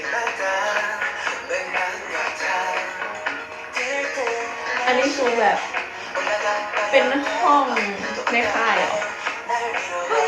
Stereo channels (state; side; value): identical; both; correlation 1.00